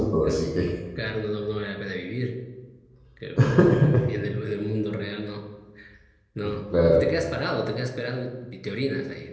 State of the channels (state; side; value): identical; both; correlation 1.00